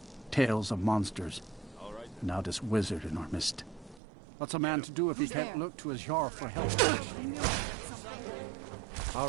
Tales of monsters. And now this wizard in our midst. What's a man to do if he can't look to his Jarl for help? All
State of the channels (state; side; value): drops out; left; at 4.0 s